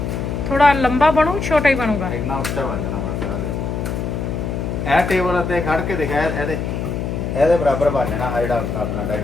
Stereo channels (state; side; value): noise; left; hum, 3 dB below the sound